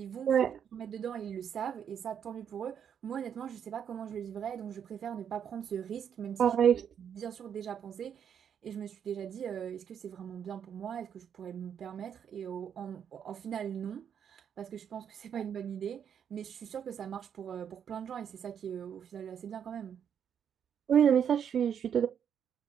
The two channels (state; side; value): quieter; left; 8.3 dB